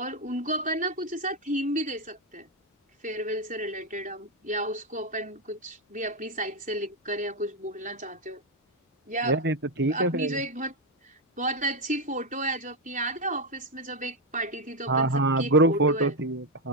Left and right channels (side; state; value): both; normal; correlation 0.05